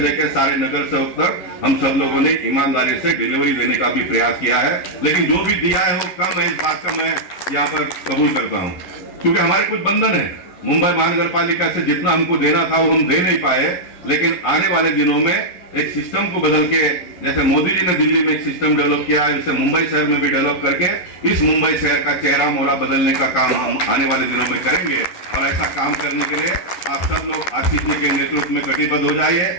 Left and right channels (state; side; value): late; right; 11 ms